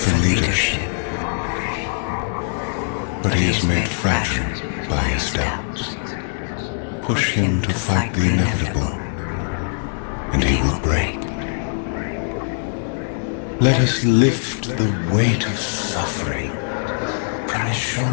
for leadership. But he is made fragile by his doubts. Push him to fight the inevitable, and he will break. Let us lift the weight of suffering from his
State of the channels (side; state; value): right; silent; digital silence